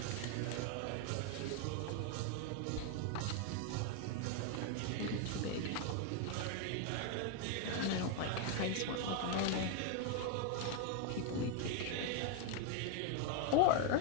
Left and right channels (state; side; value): different; both; correlation 0.01